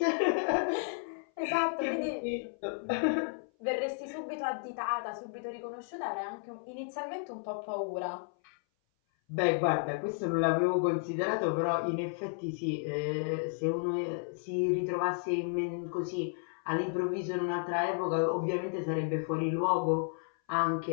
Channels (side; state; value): right; silent; 56 dB below the other